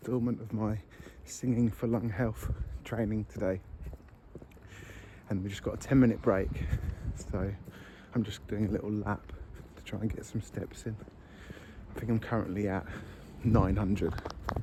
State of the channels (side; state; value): both; identical; correlation 1.00